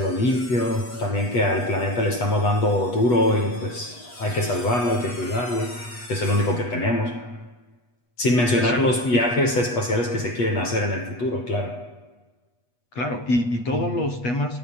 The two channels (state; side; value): late; right; 8.2 ms